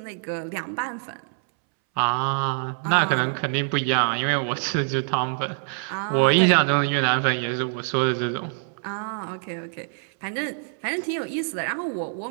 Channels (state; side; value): silent; left; 62 dB below the other